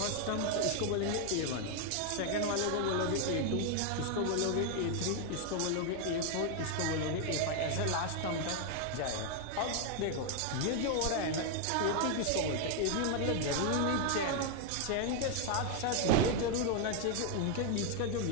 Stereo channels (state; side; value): different; both; correlation 0.00